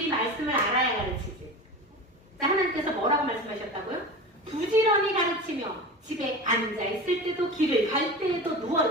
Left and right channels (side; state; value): both; normal; correlation 0.31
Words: 말씀을 알아야 가르치지. 자, 하나님께서 뭐라고 말씀하셨다고요? 부지런히 가르치며 집에 앉아있을 때도, 길을 갈 때에도,